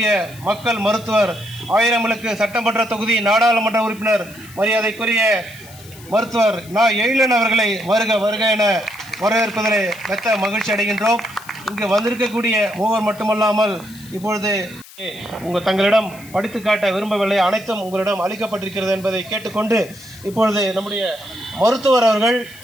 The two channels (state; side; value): noise; left; hiss, 20 dB below the sound